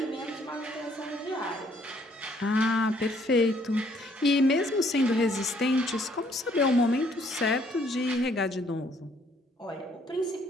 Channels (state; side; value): normal; both; correlation 0.65